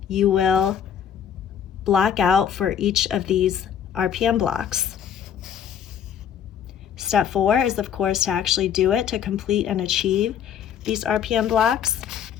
you will block out for each of these RPM blocks. Step 4 is, of course, to actually do it, to complete and achieve these RPM blocks.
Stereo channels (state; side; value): quieter; right; 8.7 dB